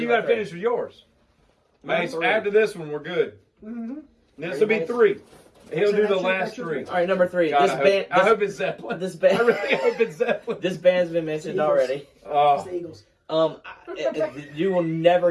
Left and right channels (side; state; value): both; identical; correlation 1.00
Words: you got to finish with yours. Mace, after this one, we're good. Mm-hmm. This will be 3. He'll So do the that's your- last that's your 3. All right, number 3. God, This I hope it's Zeppelin. This band. I really hope it's Zeppelin. This band's been mentioned Eagles. already. It's Oh, the Eagles. You will never